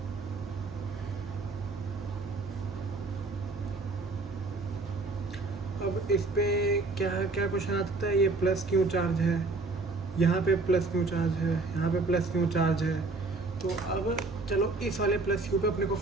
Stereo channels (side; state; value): left; quieter; 3.6 dB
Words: अब इस पे क्या क्या क्वेश्चन आता है। ये प्लस क्यू चार्ज है, यहाँ पे प्लस क्यू चार्ज है, यहाँ पे प्लस क्यू चार्ज है। तो अब चलो इस वाले प्लस क्यू पे अपने को